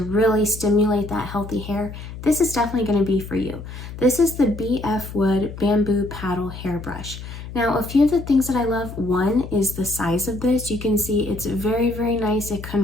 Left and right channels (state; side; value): noise; left; hum, 11 dB below the sound